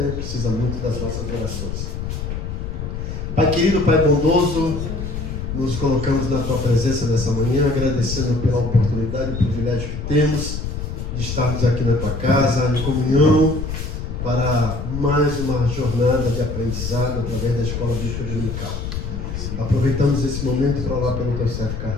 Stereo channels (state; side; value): noise; left; rumble, 5 dB below the sound